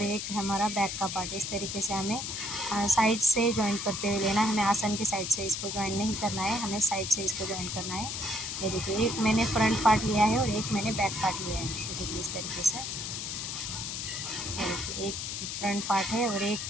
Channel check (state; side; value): noise; left; hiss, 4 dB below the sound